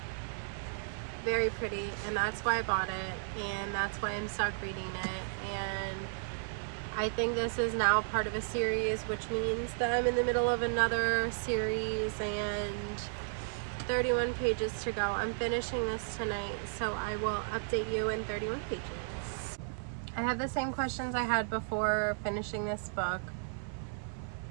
very pretty, and that's why I bought it, and that's why I'm stuck reading it. And I think this is now part of a series, which means that I'm in the middle of another series, and 31 pages to go. I'm finishing this tonight, so I will update you in 31 pages. I have the same questions I had before finishing this book.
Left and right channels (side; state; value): left; silent; 55 dB below the other